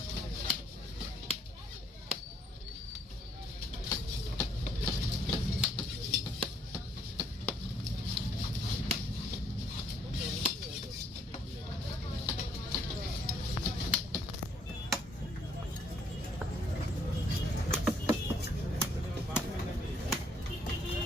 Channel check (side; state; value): both; normal; correlation 0.67